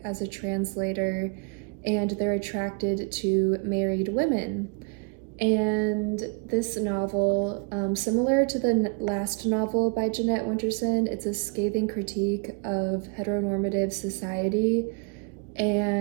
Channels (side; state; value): left; quieter; 35.4 dB